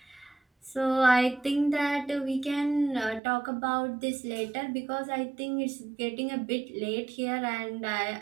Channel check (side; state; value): left; drops out; at 3.2 s